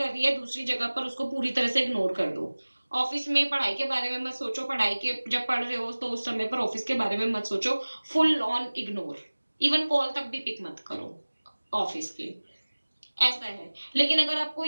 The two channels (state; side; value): inverted; both; correlation -1.00